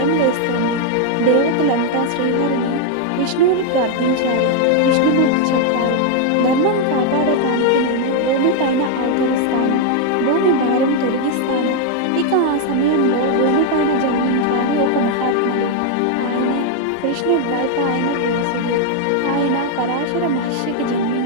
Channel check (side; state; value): both; different; correlation 0.00